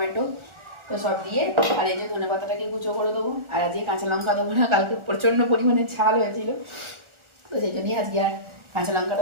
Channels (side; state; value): left; late; 1.4 ms